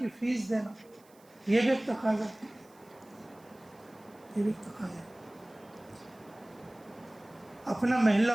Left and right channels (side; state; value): right; noise; hiss, 29 dB below the sound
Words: فیس دینا یہ بھی ایک تقاضا ہے. یہ بھی ایک تقاضا ہے. اپنا محلہ